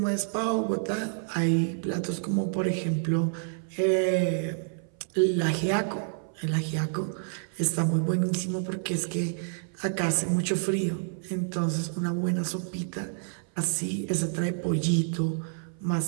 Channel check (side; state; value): left; silent; 57 dB below the other